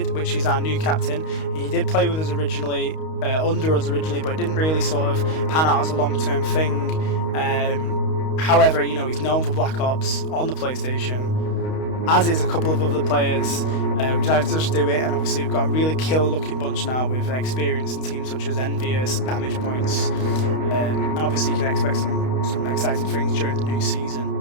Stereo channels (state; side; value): late; right; 32 ms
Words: which is our new captain. He did play with us originally, under us originally, but it didn't really sort of pan out as a long-term thing. However, he's known for Black Ops on the PlayStation, as is a couple of other players. We decided to just do it, and obviously we've got a really kill-looking bunch now with experience in teams such as Envious, Damage Points, and obviously you can expect some exciting things during the new season.